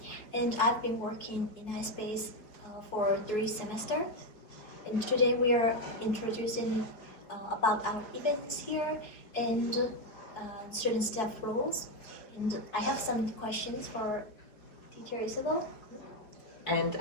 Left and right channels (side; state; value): right; late; 4.7 ms